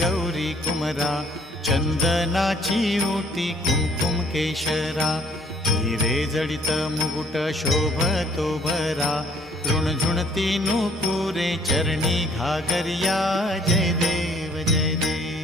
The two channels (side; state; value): both; normal; correlation 0.60